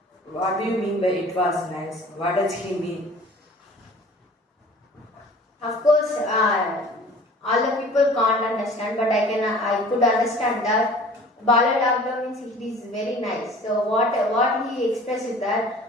What do you mean by it was nice? What does he mean? Of course, all the people can't understand, but I could understand that Balu Laglo means it is very nice. So what he expressed is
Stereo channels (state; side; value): normal; both; correlation 0.46